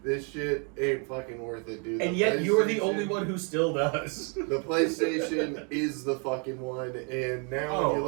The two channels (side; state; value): left; quieter; 37.8 dB